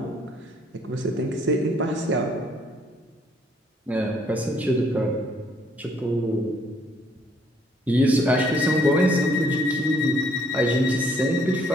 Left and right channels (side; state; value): both; normal; correlation 0.65